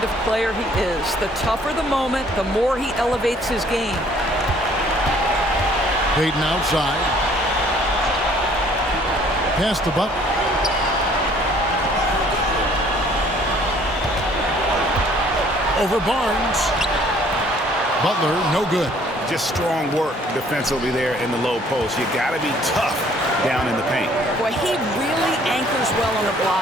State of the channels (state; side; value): normal; both; correlation 0.58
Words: of player he is. The tougher the moment, the more he elevates his game. Payton outside. Pass to Butler. Over Barnes. Butler, no good. Just strong work defensively there in the low post. You got to be tough down in the paint. Boy, he really anchors well on the